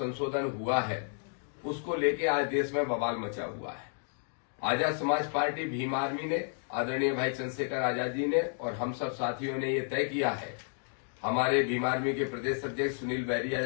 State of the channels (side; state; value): right; silent; 57 dB below the other